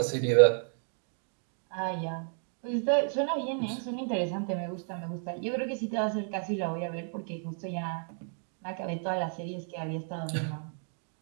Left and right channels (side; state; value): left; silent; 56 dB below the other